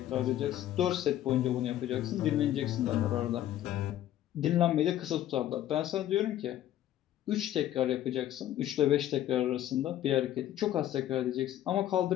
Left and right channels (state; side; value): quieter; right; 12.5 dB